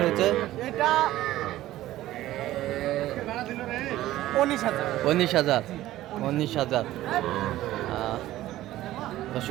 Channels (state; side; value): quieter; left; 15.0 dB